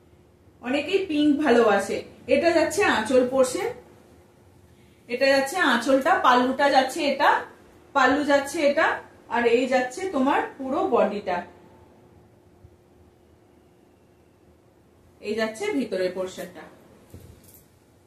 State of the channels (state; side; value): identical; both; correlation 1.00